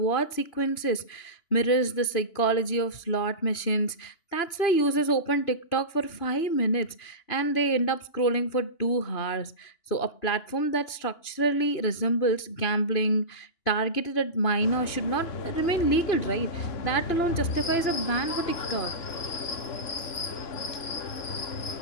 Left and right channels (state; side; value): late; right; 2.9 ms